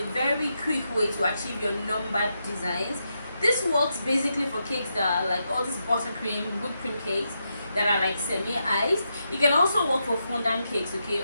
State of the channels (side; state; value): both; inverted; correlation -0.84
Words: very quick way to achieve your numbered designs. This works basically for cakes that are like all these buttercream, whipped cream cakes that are like semi-iced. It can also work for fondant cakes, okay,